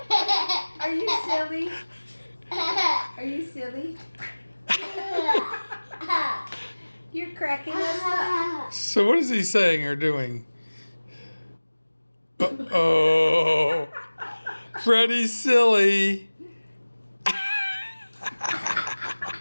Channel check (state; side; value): inverted; both; correlation -1.00